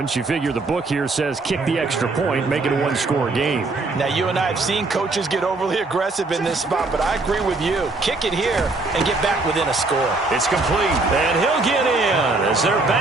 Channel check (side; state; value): left; quieter; 3.4 dB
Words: You figure the book here says kick the extra point, make it a one-score game. Now, you and I have seen coaches get overly aggressive in this spot, but I agree with you. Kick it here and get back within a score. It's complete, and he'll get in as they're